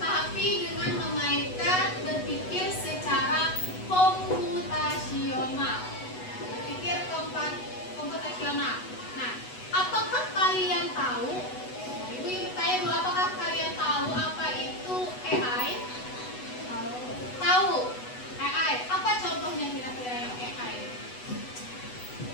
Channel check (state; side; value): late; right; 8.1 ms